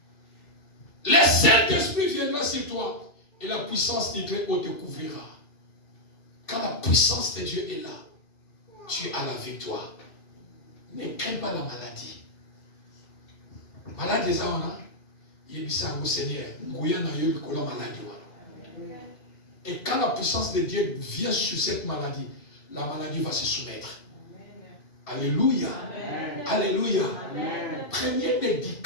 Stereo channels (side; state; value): right; late; 2.7 ms